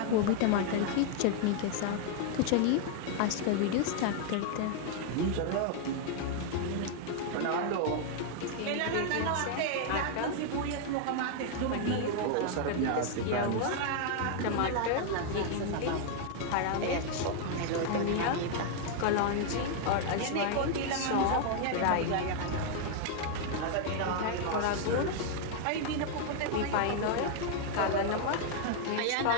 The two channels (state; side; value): different; both; correlation 0.00